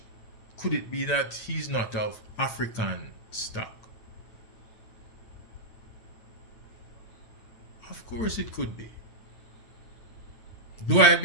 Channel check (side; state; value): right; late; 9.0 ms